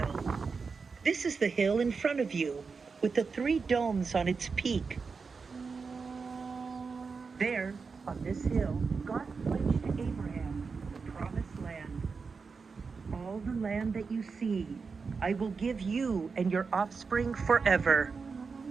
This is the hill in front of you, with the 3 domes on its peak. There, on this hill, God pledged to Abraham the promised land. All the land that you see, I will give you and your offspring forever.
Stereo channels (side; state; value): left; quieter; 5.0 dB